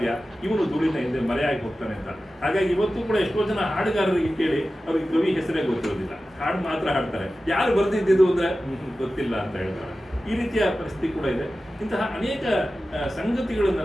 ಇವನು ಧೂಳಿನ ಹಿಂದೆ ಮರೆಯಾಗಿ ಹೋಗ್ತಾನೆ ಅಂತ. ಹಾಗಾಗಿ ಇವತ್ತು ಕೂಡ ಎಷ್ಟೋ ಜನ ಹಾಡುಗಾರರಿಗೆ ಕೇಳಿ ಅವ್ರಿಗೆ ಕವಿ ಹೆಸರೇ ಗೊತ್ತಿರೋದಿಲ್ಲ, ಹಾಡು ಮಾತ್ರ ಹಾಡ್ತಾರೆ. ಯಾರು ಬರ್ದಿದ್ದು ಅಂದ್ರೆ ಗೊತ್ತಿಲ್ಲ ಅಂತ ಹೇಳ್ತಾರೆ. ಈ ರೀತಿಯ ಪರಿಸ್ಥಿತಿ ಕೂಡ ಇದೆ. ಇಂತಹ ಅನೇಕ ಸಂಗತಿಗಳನ್ನು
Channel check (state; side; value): normal; both; correlation 0.95